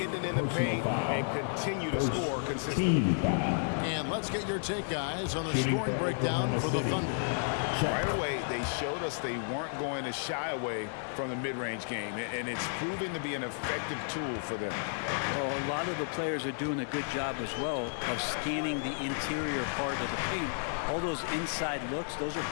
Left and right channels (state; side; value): silent; right; digital silence